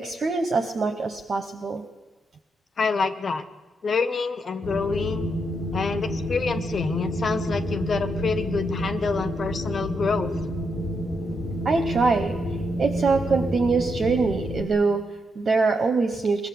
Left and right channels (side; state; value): both; normal; correlation 0.80